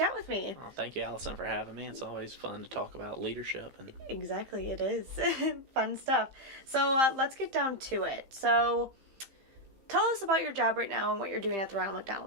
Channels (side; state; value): left; late; 15 ms